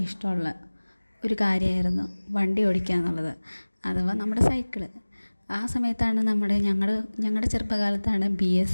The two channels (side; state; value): both; inverted; correlation -1.00